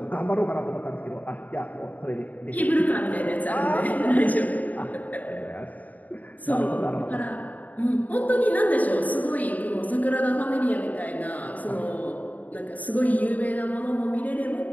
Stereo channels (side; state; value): right; late; 0.076 ms